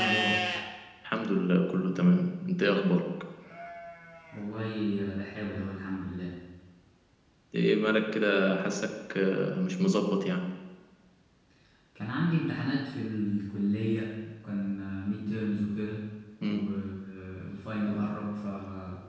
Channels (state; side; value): identical; both; correlation 1.00